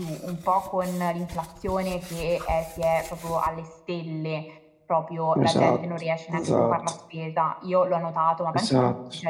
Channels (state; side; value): identical; both; correlation 1.00